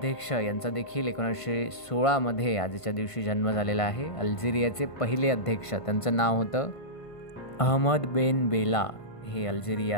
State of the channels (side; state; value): right; late; 1.5 ms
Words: यांचा देखील 1916मध्ये आजच्या दिवशी जन्म झालेला आहे. अल्जेरियाचे पहिले अध्यक्ष, त्यांचं नाव होतं अहमद बेन बेला. हे